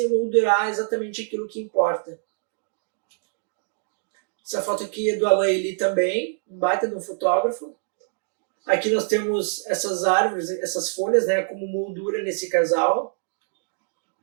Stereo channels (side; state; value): left; silent; digital silence